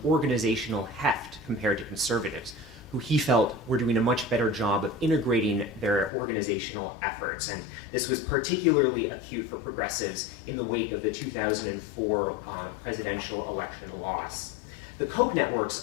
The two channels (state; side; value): drops out; right; at 6.1 s